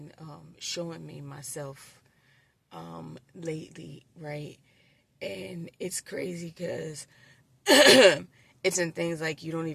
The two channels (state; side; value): identical; both; correlation 1.00